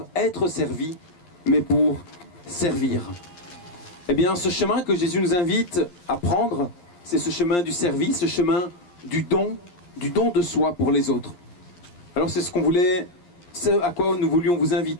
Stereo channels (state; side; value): late; right; 11 ms